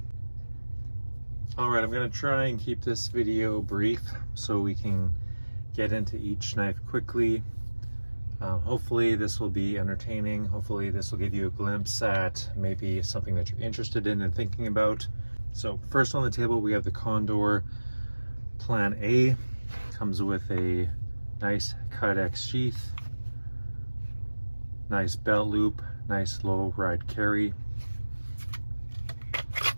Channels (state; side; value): inverted; both; correlation -1.00